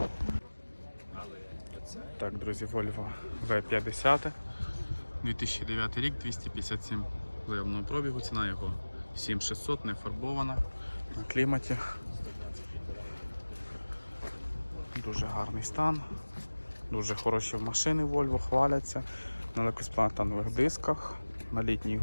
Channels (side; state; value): both; inverted; correlation -1.00